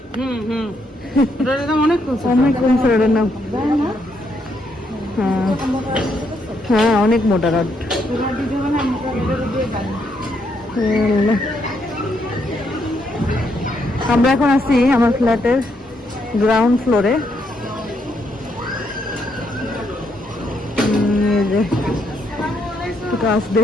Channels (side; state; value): both; normal; correlation 0.76